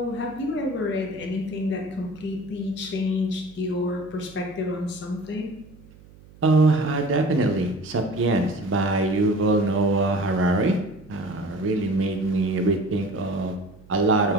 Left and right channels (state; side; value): noise; right; hum, 23 dB below the sound